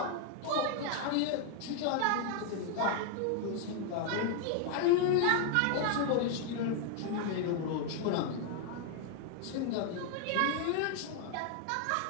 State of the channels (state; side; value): different; both; correlation 0.00